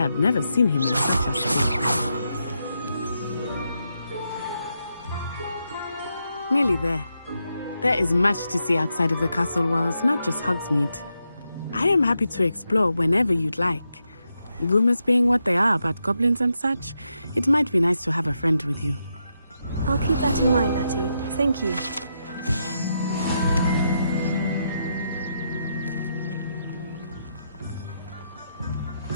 never seen him in such a state. Nearly there. There is much to see outside of the castle walls, not just Hogsmeade. I am happy to explore whenever you'd like. Rumors being what they are about goblins and such, it might be nice to have a friend with you. I'll keep that in mind, Natty. Thank you.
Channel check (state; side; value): inverted; both; correlation -0.83